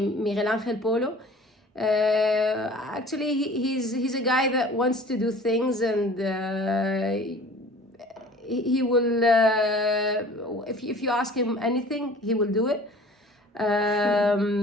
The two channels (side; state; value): both; normal; correlation 0.46